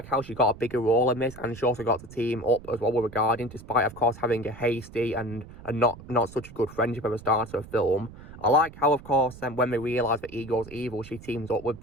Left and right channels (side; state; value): right; noise; rumble, 17 dB below the sound